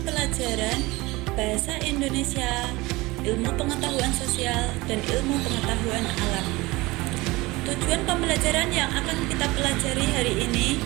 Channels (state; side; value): quieter; left; 21.4 dB